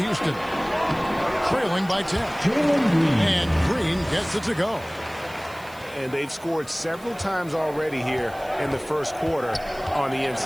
Trailing by 10. And Green gets it to go. And they've scored several times already here in the first quarter on the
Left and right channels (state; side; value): noise; right; hiss, 23 dB below the sound